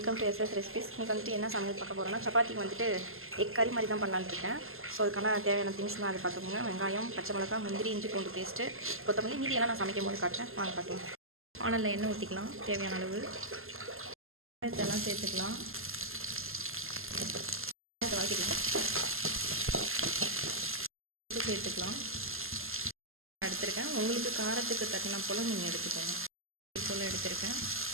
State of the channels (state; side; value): late; left; 0.61 ms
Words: to SS recipes. இன்றைக்கி வந்துட்டு என்ன சமையல் பார்க்க போகிறோன்னா, சப்பாத்திக்கு வந்துட்டு எக் கறி மாதிரி தான் பண்ணலான்னு இருக்கேன். ஸோ அதுக்கான தேவையான திங்ஸ்லாம் அதை பார்த்துக்கோங்க. வெங்காயம், பச்சை மிளகா, முந்திரி, இஞ்சி பூண்டு பேஸ்ட்டு, கொத்தமல்லி, மீதியெல்லாம் நான் சமைக்கும் போது காட்டுறேன். வாங்க பார்க்கலாம். வானலில் எண்ணெய் ஊற்றிக்கலாம் தேவையான அளவு. இதெல்லாம் சேர்த்துக்கலாம். வதக்கிக்கலாம். சேர்த்துக்கலாம். எடுத்துருக்கேன். உங்களுக்கு காரத்துக்கு தட்டினா போல் நீங்கள் எடுத்துக்கோங்க. போல் எடுத்துருக்கேன்.